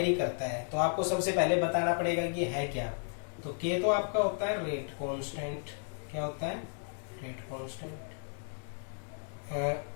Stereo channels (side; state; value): right; silent; digital silence